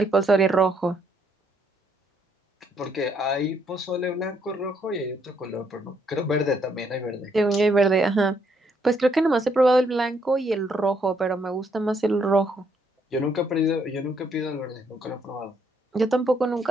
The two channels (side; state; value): both; normal; correlation 0.71